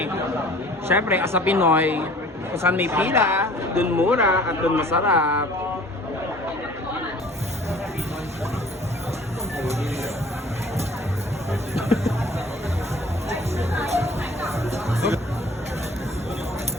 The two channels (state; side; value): normal; both; correlation 0.50